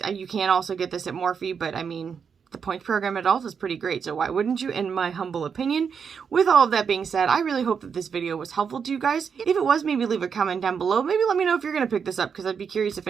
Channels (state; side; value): quieter; left; 6.5 dB